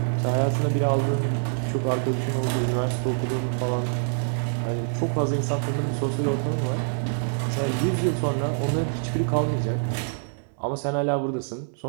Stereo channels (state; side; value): silent; left; 61 dB below the other